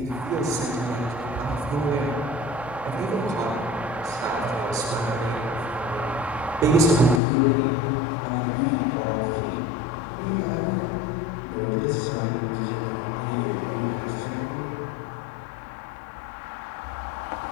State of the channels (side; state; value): right; drops out; at 7.2 s